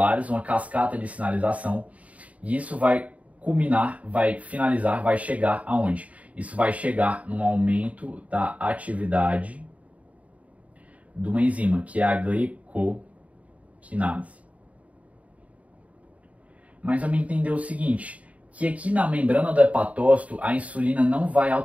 uma cascata de sinalização, e isso vai culminar, vai finalizar, vai chegar aonde? Isso vai chegar num aumento da atividade de uma enzima, que é a glicoquinase. Mas vamos entender o seguinte, que aqui na membrana do hepatócito a insulina não vai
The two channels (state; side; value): late; left; 0.068 ms